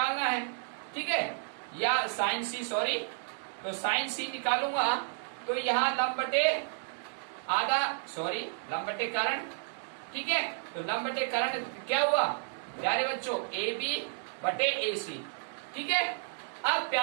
है। ठीक है, या साइन सी, सॉरी, तो साइन सी निकालूंगा तो यहाँ लंब बटे आधा, सॉरी लंब बटे कर्ण। ठीक है, तो लंब बटे कर्ण क्या हुआ प्यारे बच्चों, ए बी बटे ए सी। ठीक है, अब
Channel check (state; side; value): silent; left; 57 dB below the other